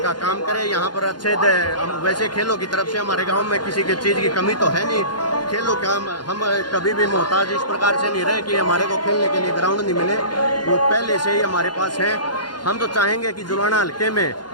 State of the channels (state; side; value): late; right; 0.71 ms